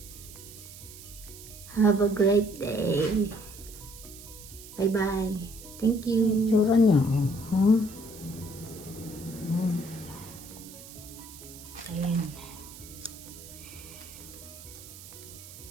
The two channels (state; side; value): noise; right; hiss, 16 dB below the sound